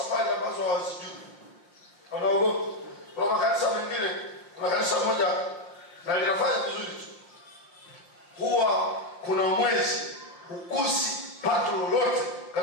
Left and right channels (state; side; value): late; right; 5.7 ms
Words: ambazo hawazijui. Wanaogopa. Kwa makanisa mengine, kuna kanisa moja na linafanya vizuri tu, huwa kuna mwezi hukusi pato lolote